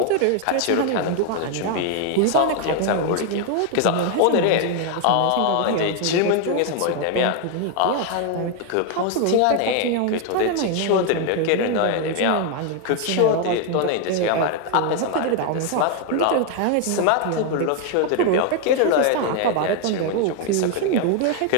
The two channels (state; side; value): different; both; correlation 0.01